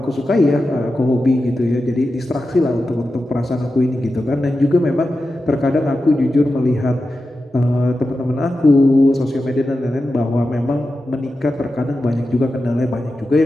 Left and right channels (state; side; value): normal; both; correlation 0.91